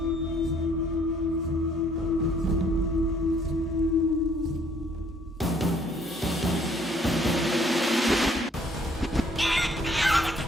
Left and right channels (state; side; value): normal; both; correlation 0.63